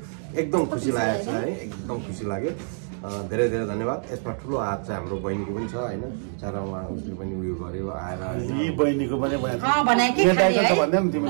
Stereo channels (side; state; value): left; silent; 60 dB below the other